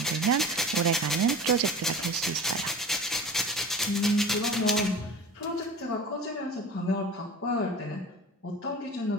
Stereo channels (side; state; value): both; normal; correlation 0.37